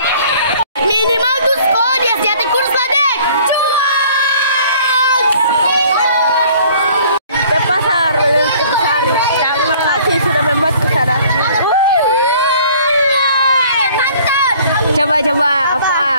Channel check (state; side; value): inverted; both; correlation -0.54